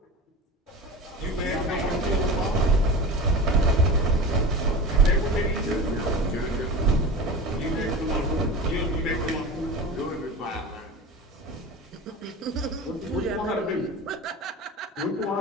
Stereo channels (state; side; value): normal; both; correlation 0.31